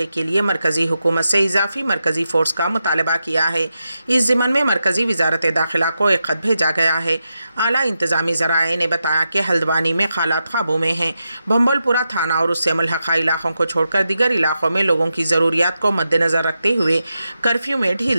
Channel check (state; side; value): inverted; both; correlation -0.88